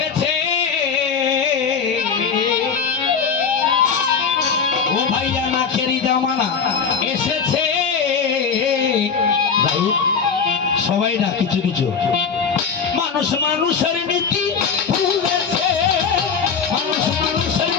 ও ভাইয়া নাখেরি জামানা এসেছে। সবাই না কিছু কিছু মানুষ মানুষের নীতি ভুলেছে, মানুষ মানুষের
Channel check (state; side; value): quieter; right; 6.0 dB